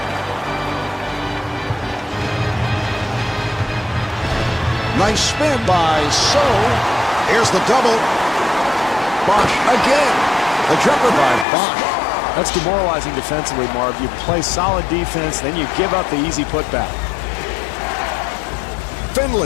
Nice spin by So. Here's the double. Bosch again. The jumper by Bosch. That's demoralizing defensively, Marv. You play solid defense, then you give up the easy putback.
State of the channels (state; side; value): drops out; right; at 11.5 s